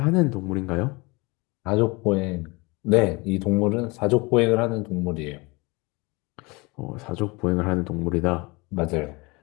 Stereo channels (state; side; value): quieter; right; 25.9 dB